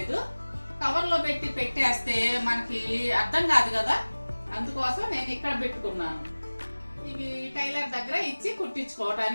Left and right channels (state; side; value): inverted; both; correlation -1.00